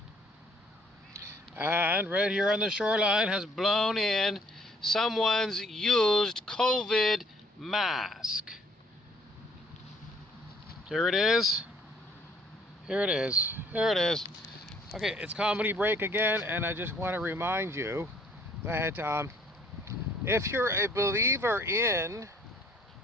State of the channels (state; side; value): normal; both; correlation 0.61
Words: and right here on the shoreline has blown in someone's used COVID mask. Here it is. Here it is. Here it is. Okay, it's comedy break again, and I just want to remind you that if you're a believer in